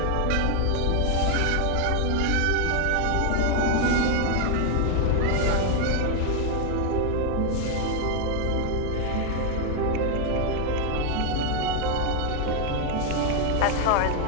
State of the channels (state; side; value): different; both; correlation 0.00